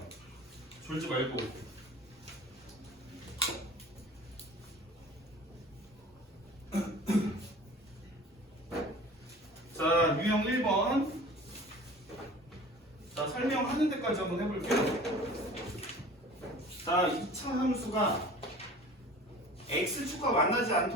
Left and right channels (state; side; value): normal; both; correlation 0.43